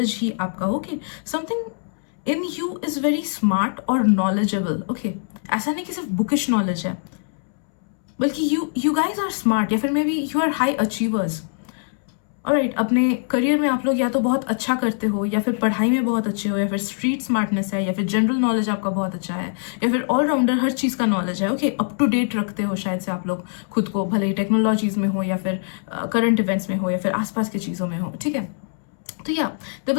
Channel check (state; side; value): silent; right; 64 dB below the other